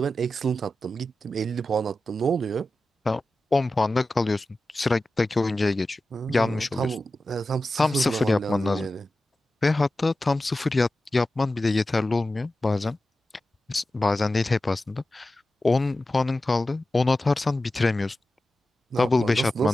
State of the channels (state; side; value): normal; both; correlation 0.93